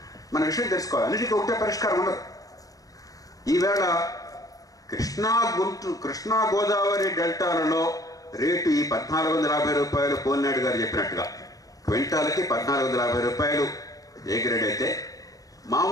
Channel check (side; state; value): right; late; 0.17 ms